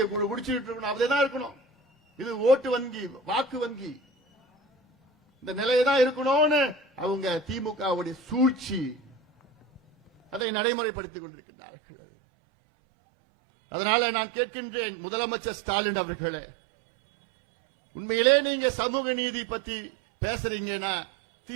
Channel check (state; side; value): drops out; left; at 10.5 s